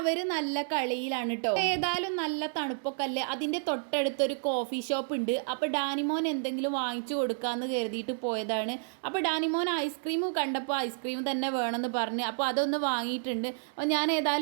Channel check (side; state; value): left; silent; digital silence